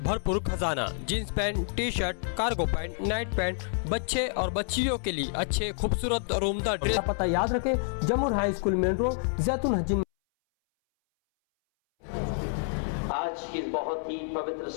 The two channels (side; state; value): right; silent; 59 dB below the other